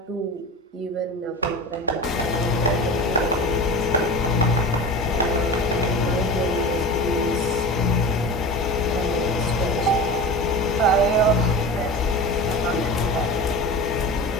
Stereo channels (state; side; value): normal; both; correlation 0.32